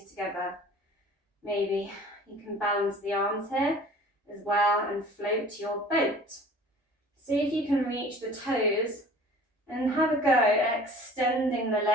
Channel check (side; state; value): both; normal; correlation 0.47